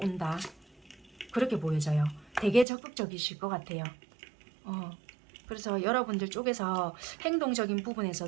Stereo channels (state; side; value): drops out; left; at 2.7 s